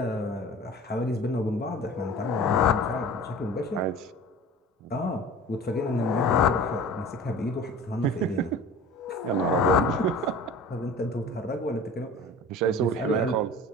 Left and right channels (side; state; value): both; normal; correlation 0.40